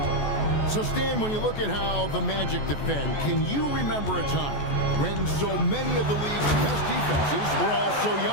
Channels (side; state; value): right; late; 14 ms